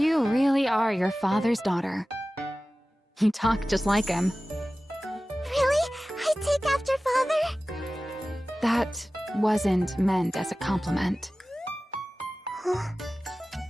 really are your father's daughter. You talk just like him. Really? I take after Father? That wasn't meant as a compliment. Huh?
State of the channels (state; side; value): normal; both; correlation 0.96